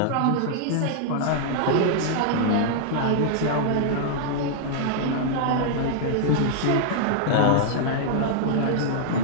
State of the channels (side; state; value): both; different; correlation -0.01